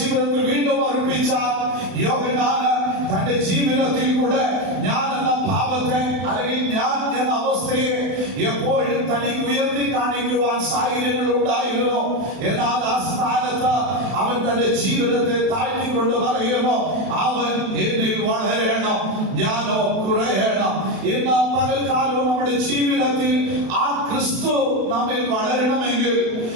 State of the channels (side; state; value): left; late; 32 ms